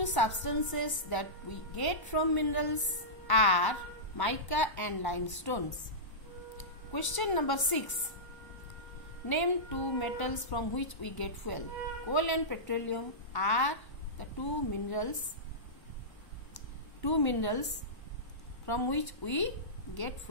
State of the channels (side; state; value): right; late; 1.1 ms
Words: substances that we get from minerals are mica and limestones. Question number 6. Name 2 metals from which we get fuel. Coal and petroleum are the 2 minerals from which we get